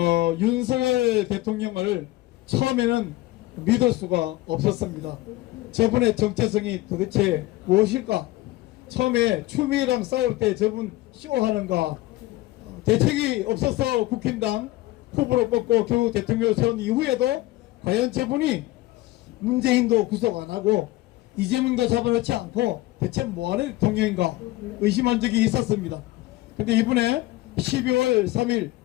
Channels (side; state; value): right; quieter; 17.9 dB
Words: 윤석열 대통령을 처음에는 믿을 수가 없었습니다. 저분의 정체성이 도대체 무엇일까? 처음에 추미애랑 싸울 때 저분 쇼하는가? 대책이 없어서 국힘당 후보로 뽑고 결국 대통령을 세운 이후에도 과연 저분이 문재인도 구속 안 하고 이재명도 잡아놓지 않고 대체 뭐하는 대통령인가 의심한 적이 있었습니다. 근데 이번에 12월 3일